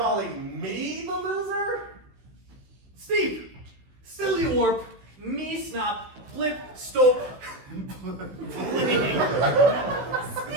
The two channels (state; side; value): late; left; 16 ms